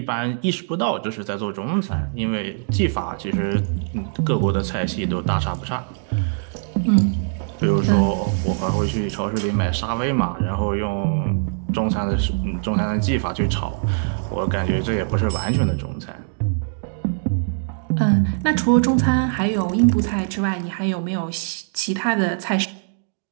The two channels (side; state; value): left; silent; digital silence